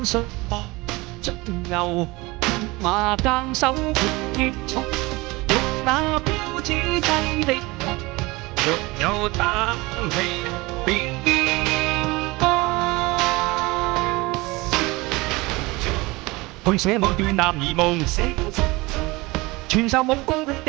術搏盡牛馬耕手結束，欲那標誌劑的痛，若有膽氣便去寫某段男兒夢，傳授武功的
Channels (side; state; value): left; quieter; 22.7 dB